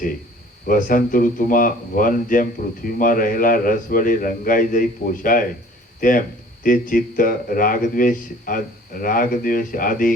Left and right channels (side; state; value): both; normal; correlation 0.51